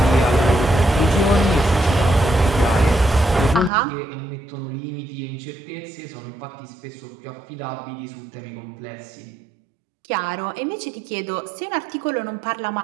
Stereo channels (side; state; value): left; drops out; at 3.7 s